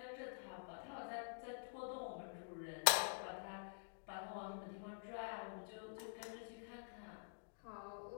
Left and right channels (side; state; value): right; silent; digital silence